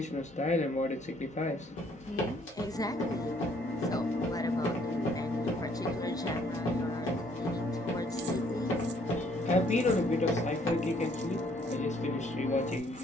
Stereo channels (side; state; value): both; normal; correlation 0.64